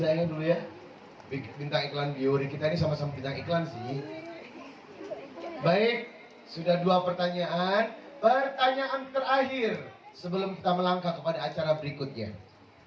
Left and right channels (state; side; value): identical; both; correlation 1.00